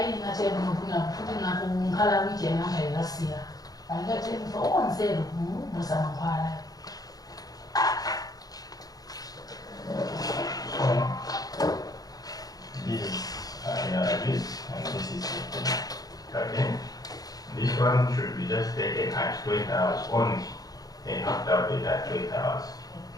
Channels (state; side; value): late; right; 0.18 ms